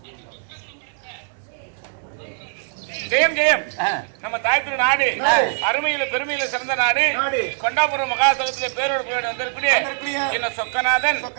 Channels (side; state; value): left; silent; 64 dB below the other